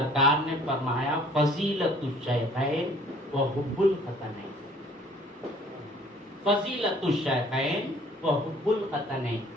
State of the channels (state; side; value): normal; both; correlation 0.55